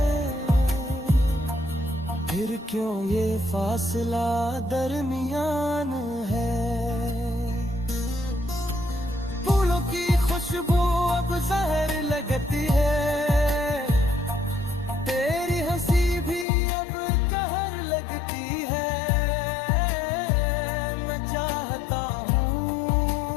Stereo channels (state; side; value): drops out; right; at 16.4 s